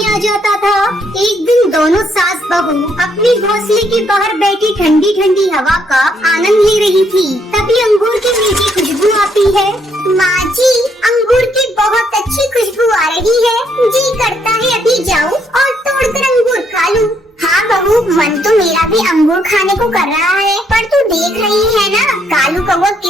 आ जाता था। एक दिन दोनों सास बहू अपने घोंसले के बाहर बैठी ठंडी ठंडी हवा का आनंद ले रही थी। तभी अंगूर की मीठी खुशबू आती है। माँ जी, अंगूर की बहुत अच्छी खुशबू आ रही है। जी करता है अभी जाऊँ और तोड़कर अंगूर खा लूँ। हाँ बहू, मन तो मेरा भी अंगूर खाने को कर रहा है, पर तू देख रही है ना कालू कौवा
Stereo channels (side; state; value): both; normal; correlation 0.72